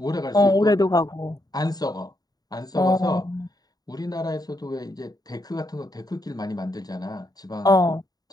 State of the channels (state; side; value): late; right; 0.19 ms